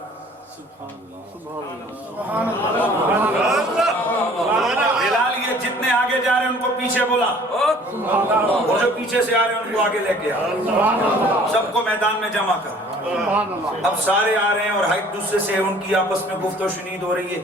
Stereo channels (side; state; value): both; normal; correlation 0.52